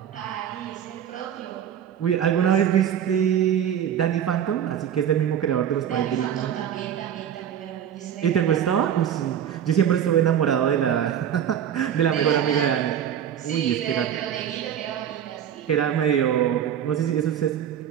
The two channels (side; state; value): left; quieter; 9.4 dB